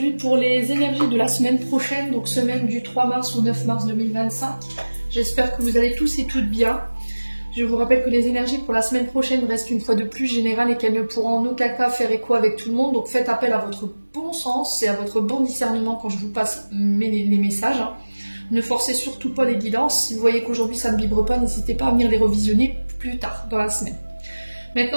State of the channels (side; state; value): both; inverted; correlation -1.00